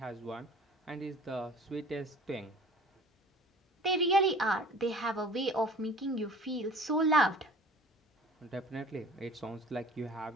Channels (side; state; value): both; normal; correlation 0.46